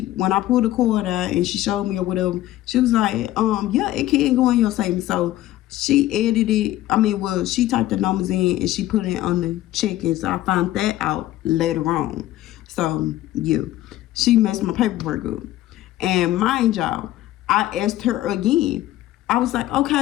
I pulled the card out and she showed me or whatever, she was like, yeah, it can go in your savings. So she she typed the numbers in and she put it on the check-in. So I found that out later on. So yeah, she messed my paperwork up. And mind y'all, I asked her again. I was like,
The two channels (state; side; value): quieter; right; 14.9 dB